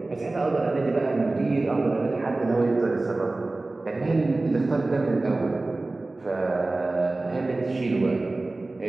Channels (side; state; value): left; quieter; 3.1 dB